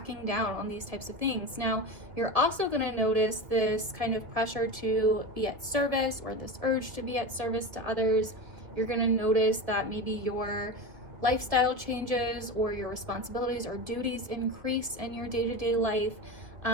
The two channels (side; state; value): left; late; 1.7 ms